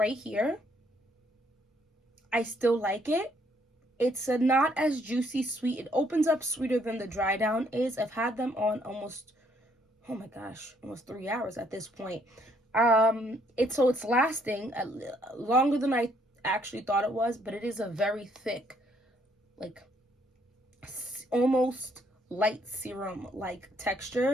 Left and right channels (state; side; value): normal; both; correlation 0.68